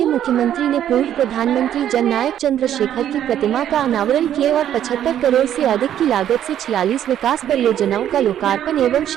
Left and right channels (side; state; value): left; quieter; 10.7 dB